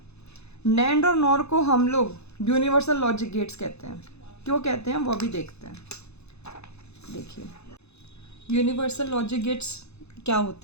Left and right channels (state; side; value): late; right; 0.80 ms